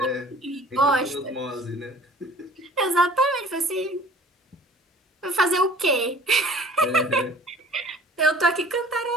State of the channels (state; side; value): normal; both; correlation 0.48